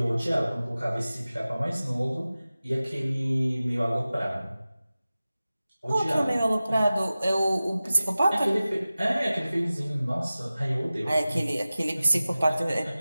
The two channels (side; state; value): both; inverted; correlation -0.96